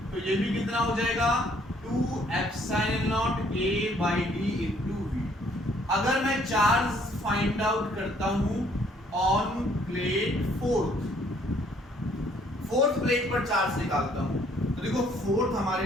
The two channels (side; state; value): both; normal; correlation 0.63